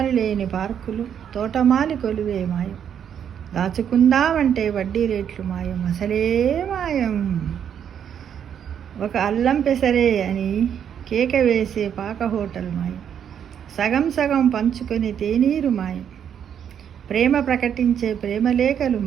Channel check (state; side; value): quieter; left; 8.6 dB